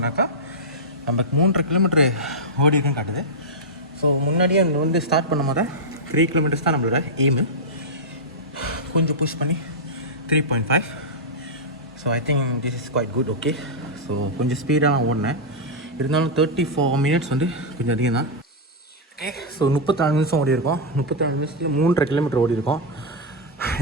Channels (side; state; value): both; normal; correlation -0.07